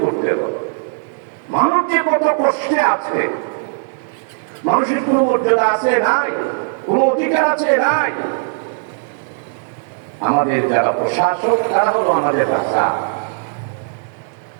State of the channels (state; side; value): silent; left; digital silence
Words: করতে হবে। মানুষ যে কত কষ্টে আছে, মানুষের কোনো মর্যাদা আছে নাই, কোনো অধিকার আছে নাই। আমাদের যারা প্রশাসক তারা হলো আমাদের রাজা।